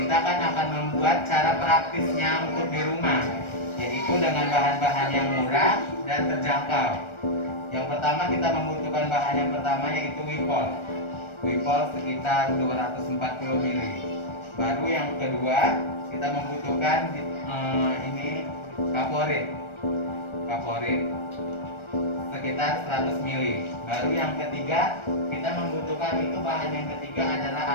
akan membuat cara praktisnya untuk di rumah, yaitu dengan bahan-bahan yang murah dan terjangkau. Yang pertama kita membutuhkan bahan yang pertama yaitu Wipol sekitar 240 ml. Baru yang kedua kita membutuhkan ini kaporit sekitar 100 ml. Baru yang ketiga kita membutuhkan itu bahan yang ketiga adalah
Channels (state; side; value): late; right; 1.4 ms